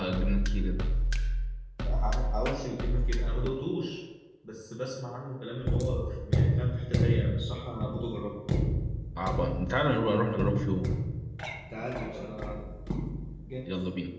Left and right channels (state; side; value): identical; both; correlation 1.00